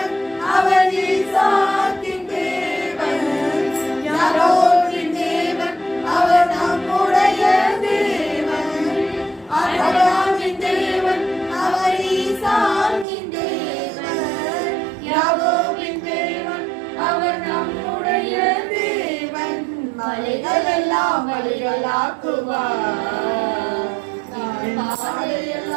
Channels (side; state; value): left; drops out; at 13.1 s